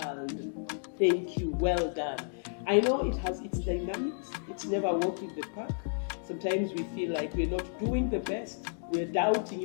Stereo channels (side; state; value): right; silent; digital silence